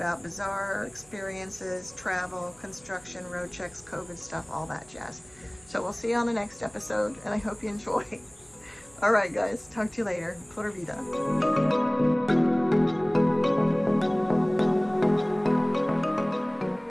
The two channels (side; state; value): right; noise; hum, 29 dB below the sound